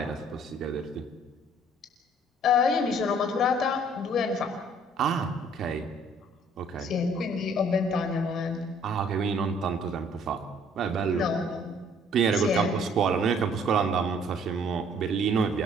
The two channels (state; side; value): normal; both; correlation 0.58